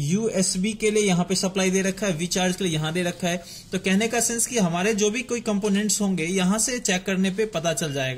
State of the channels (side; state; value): both; identical; correlation 1.00